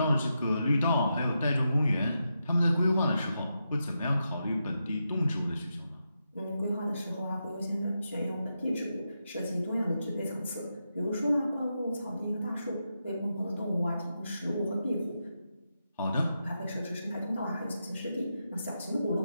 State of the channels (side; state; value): both; inverted; correlation -0.86